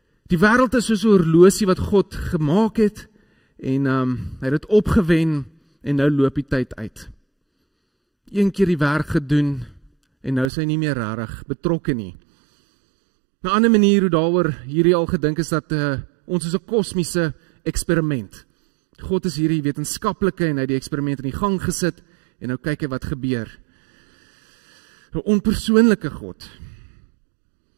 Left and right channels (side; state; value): left; drops out; at 10.5 s